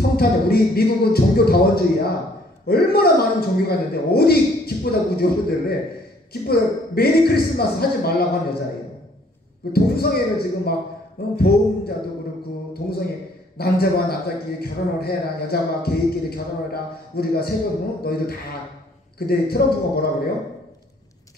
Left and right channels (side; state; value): both; normal; correlation 0.61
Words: 우리 미국은 종교다원주의야. 얼마나 많은 종교가 있는데 어디 기쁘다 구주 오셨대를 해. 기쁘다 메리 크리스마스 하지 말라고 한 여자예요. 그 동성애를 지금 막 보험자도 그렇고 동성애 남자와 남자끼리 결혼을 해라, 여자와 게이끼리 결혼을 해라, 우리가 세금 너희들 다. 근데 트럼프가 뭐라 그래요?